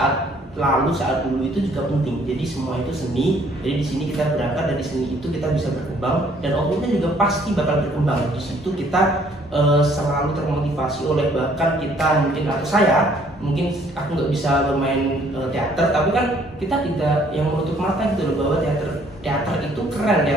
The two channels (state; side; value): normal; both; correlation 0.62